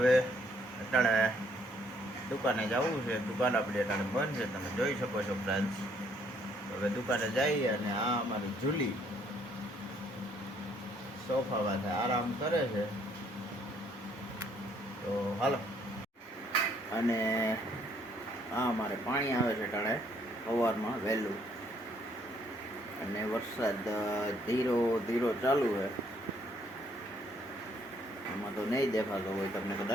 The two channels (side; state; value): both; normal; correlation 0.67